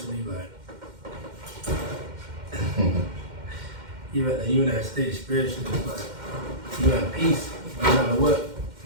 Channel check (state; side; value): late; left; 2.1 ms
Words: like you in that state spiritually, it's like you at peace, no matter what.